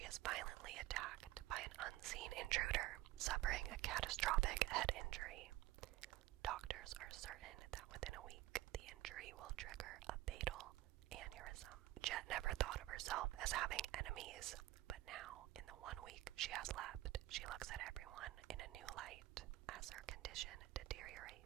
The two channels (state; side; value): quieter; left; 16.5 dB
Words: is violently attacked by an unseen intruder, suffering a catastrophic head injury. Doctors are certain that within a week, the injury will trigger a fatal aneurysm. Jet never thought of herself as having enemies, but now, in the 1 week she has left, she looks at everyone in a new light. As her condition